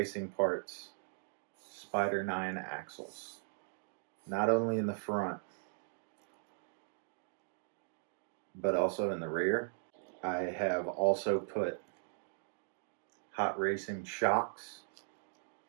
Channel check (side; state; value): left; silent; digital silence